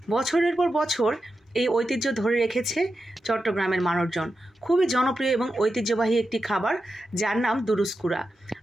বছরের পর বছর এই ঐতিহ্য ধরে রেখেছে চট্টগ্রামের মানুষজন। খুবই জনপ্রিয় এবং ঐতিহ্যবাহী একটি খাবার যার নাম দুরুস্কুরা।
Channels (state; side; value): normal; both; correlation 0.90